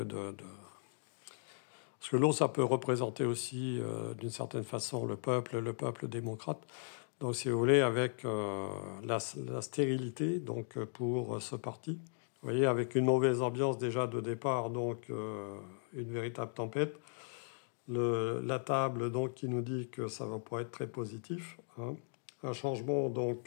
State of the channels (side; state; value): right; silent; digital silence